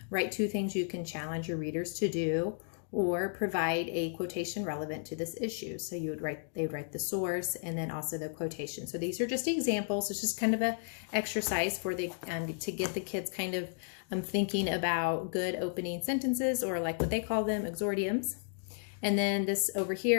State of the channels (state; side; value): silent; right; digital silence